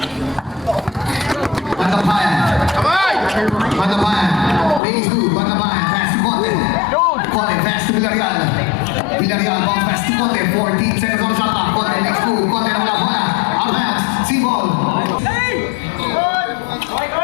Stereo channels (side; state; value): right; drops out; at 4.8 s